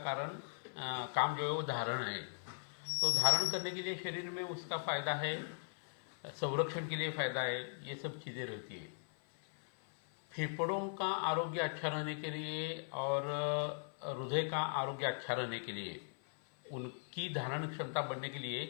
जो है वो धारण है। तो धारण करने के लिए शरीर में उसका फायदा है, संरक्षण के लिए फायदा है, ये सब चीज़ें रहती है। फेफड़ों का आरोग्य अच्छा रहने के लिए और हृदय का आरोग्य अच्छा रहने के लिए, उनकी धारण क्षमता बढ़ने के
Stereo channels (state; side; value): silent; right; 52 dB below the other